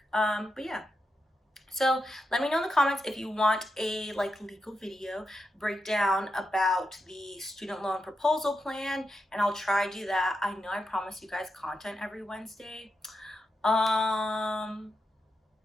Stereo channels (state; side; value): normal; both; correlation 0.86